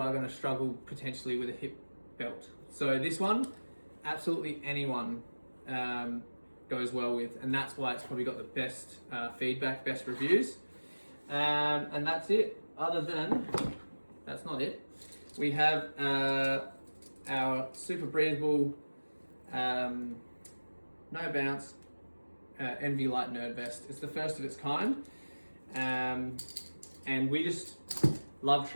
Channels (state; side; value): inverted; both; correlation -1.00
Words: struggle potentially with a hip belt. So this one, absolutely anyone goes well with, and that's why it's probably got the best feedback, best reviews. And that's it. That's not it. We have our super breathable, no bounce NV Light Nerd Vest. It's the first of its kind, and we just love